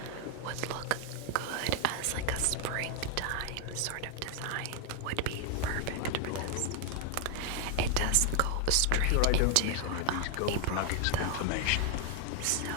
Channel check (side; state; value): both; different; correlation 0.00